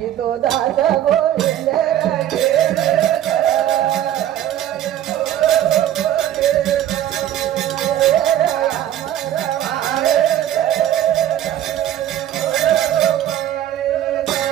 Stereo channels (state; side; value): quieter; left; 11.9 dB